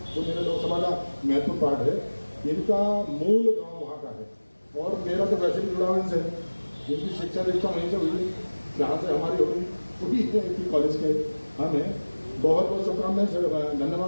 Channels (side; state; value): both; inverted; correlation -1.00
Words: जो मेरे लोकसभा का महत्वपूर्ण पार्ट है, इनका मूल गांव वहाँ का है और मेरा तो वैसे भी जुड़ा इनसे। इनकी शिक्षा दीक्षा वहीं से हुई, जहाँ से हमारी हुई है कॉलेज के। हमें बहुत बहुत शुभकामनाएं,